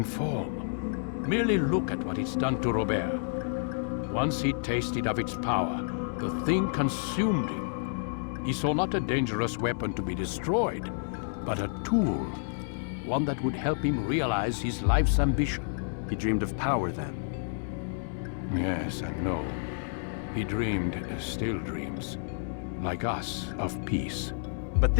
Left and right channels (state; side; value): silent; right; digital silence